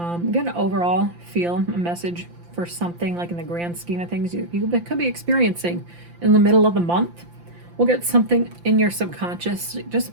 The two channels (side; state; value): left; late; 5.8 ms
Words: Get an overall feel, a message for something like in the grand scheme of things you could be experiencing in the middle of the month. We'll get something in your subconscious,